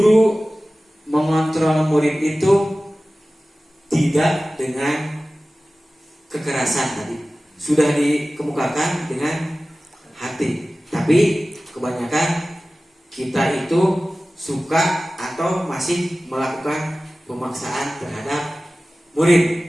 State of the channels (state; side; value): normal; both; correlation 0.97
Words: mengontrol murid itu tidak dengan kekerasan, tadi sudah dikemukakan, dengan hati. Tapi kebanyakan kita itu suka atau masih melakukan pemaksaan terhadap